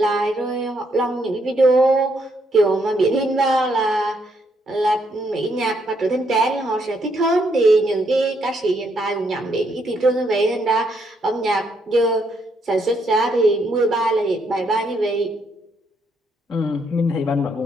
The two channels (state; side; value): normal; both; correlation 0.74